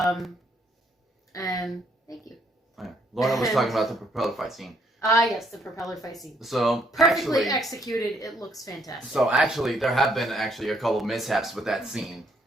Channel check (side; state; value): both; normal; correlation 0.70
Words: thank you. Oh, yeah. Laura was talking about the propeller fight scene. Yes, the propeller fight scene. So Perfectly executed. It looks fantastic. So actually, there have been a couple of mishaps with that scene,